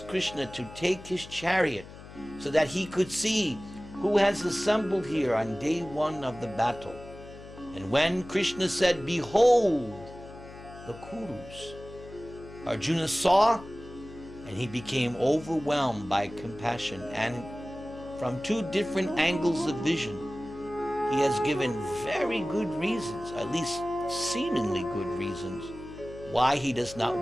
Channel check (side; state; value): left; noise; hum, 16 dB below the sound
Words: Krishna to take his chariot so that he could see who has assembled here on day one of the battle. And when Krishna said, behold, the Kurus, Arjuna saw, and he became overwhelmed by compassion. And from two different angles of vision, he has given very good reasons, at least seemingly good reasons, why he does not